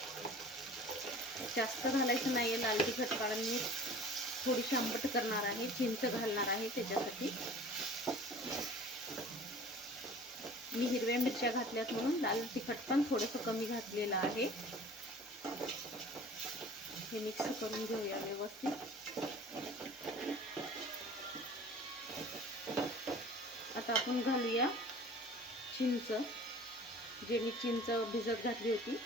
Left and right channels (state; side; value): normal; both; correlation 0.45